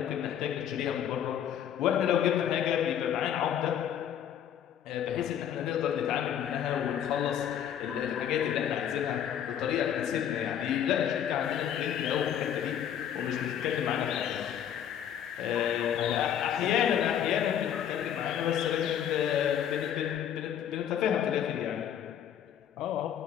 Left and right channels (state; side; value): quieter; right; 9.6 dB